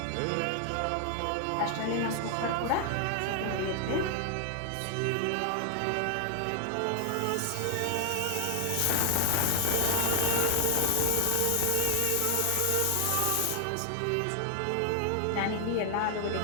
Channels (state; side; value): different; both; correlation 0.00